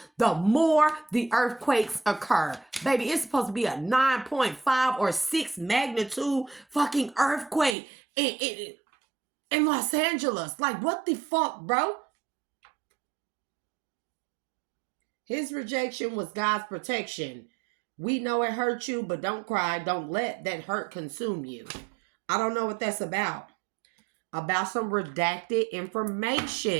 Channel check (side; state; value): left; drops out; at 7.8 s